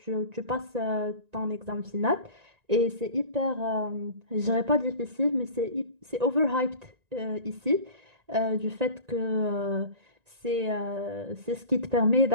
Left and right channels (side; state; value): left; late; 1.9 ms